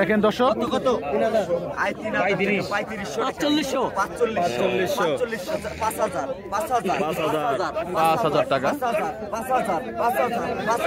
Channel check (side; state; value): both; identical; correlation 1.00